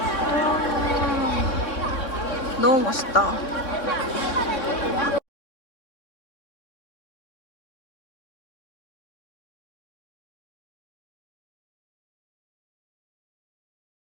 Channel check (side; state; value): right; late; 3.6 ms